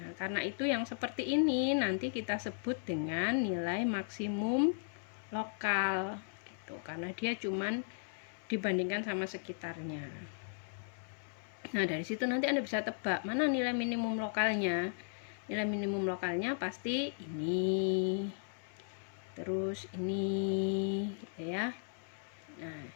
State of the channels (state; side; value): silent; right; 54 dB below the other